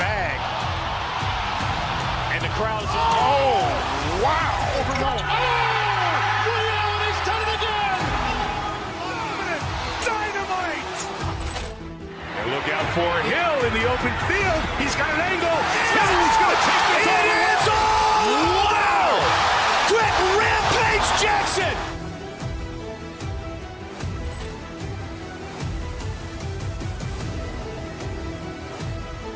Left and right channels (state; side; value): identical; both; correlation 1.00